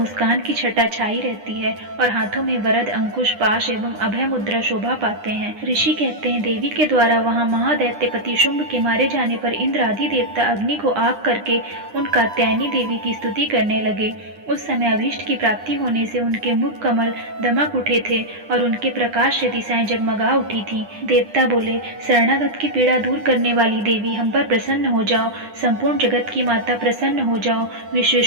की छटा छाई रहती है और हाथों में वरद, अंकुश, पाश एवं अभय मुद्रा शोभा पाते हैं। ऋषि कहते हैं, देवी के द्वारा वहाँ महादैत्यपति शुंभ के मारे जाने पर इंद्र आदि देवता अग्नि को आग करके उन कात्यायनी देवी की स्तुति करने लगे। उस समय अभीष्ट की प्राप्ति होने से उनके मुख कमल दमक उठे थे और उनके प्रकाश से दिशाएं जगमगा उठी थी। देवता बोले, शरणागत की पीड़ा दूर करने वाली देवी, हम पर प्रसन्न हो जाओ। संपूर्ण जगत की माता, प्रसन्न हो जाओ।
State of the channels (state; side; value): late; left; 9.9 ms